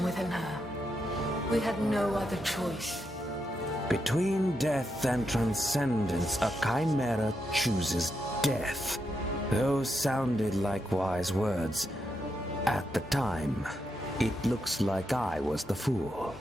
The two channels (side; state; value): both; normal; correlation 0.83